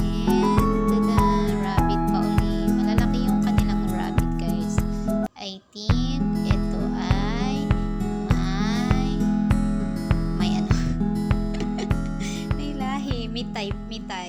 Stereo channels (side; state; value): both; identical; correlation 1.00